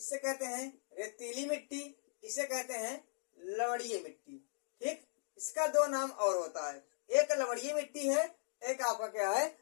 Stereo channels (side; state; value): right; silent; digital silence